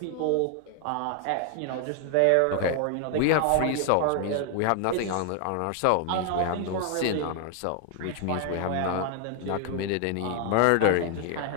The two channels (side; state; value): both; different; correlation 0.00